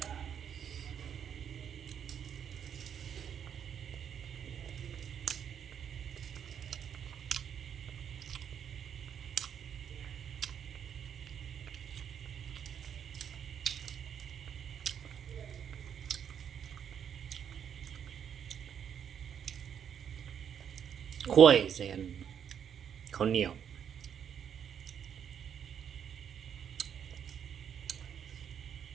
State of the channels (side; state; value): left; quieter; 8.3 dB